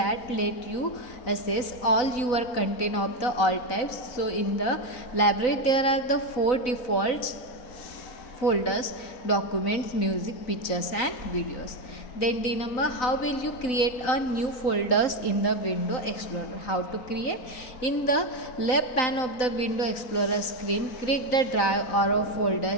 let you access all your content of the all types. So in the library there are the 4 default folders: documents, music, pictures and videos. Then D number, how will you create a new folders in the Window Explorer? How to create? In the left pane of the Window Explorer screen, click the drive or a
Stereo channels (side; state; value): right; late; 3.9 ms